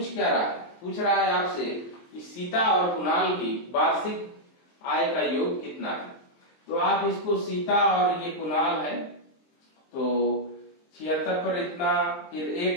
क्या रहा है, पूछ रहा है आपसे कि सीता और कुणाल की वार्षिक आय का योग कितना है। तो आप इसको सीता और ये कुणाल है, तो 76 पर इतना, फिर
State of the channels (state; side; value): late; right; 23 ms